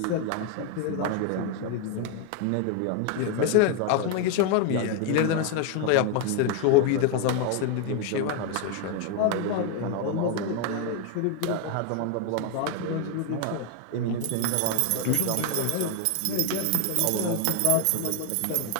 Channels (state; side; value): different; both; correlation 0.01